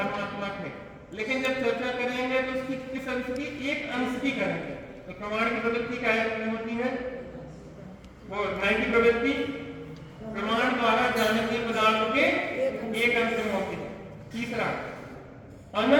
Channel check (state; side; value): identical; both; correlation 1.00